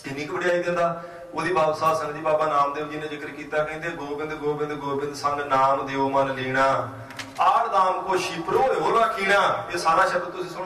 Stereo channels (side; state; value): both; identical; correlation 1.00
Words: इन्नी क वड्याई दिंदा। ਉਹਦੀ ਬਾਬਾ ਸਾਧ ਸੰਗਤ ਜੀ ਬਾਬਾ ਨਾਮਦੇਵ ਜੀ ਨੇ ਜ਼ਿਕਰ ਕੀਤਾ, ਕਹਿੰਦੇ ਗੋਬਿੰਦ ਗੋਬਿੰਦ ਗੋਬਿੰਦ ਸੰਗ ਨਾਮ ਦਿਓ ਮਨ ਲੀਣਾ, ਆੜ ਦਾਮ ਕੋ ਸ਼ਿਪਰੋ ਹੋ ਰਾਖੀਣਾ। ਇਹ ਸਾਰਾ ਸ਼ਬਦ ਤੁਸੀਂ